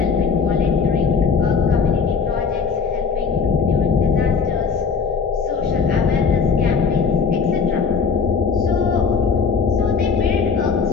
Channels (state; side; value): quieter; right; 5.6 dB